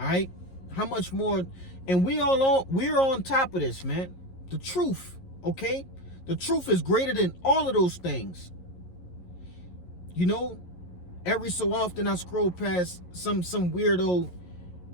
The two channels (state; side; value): late; right; 11 ms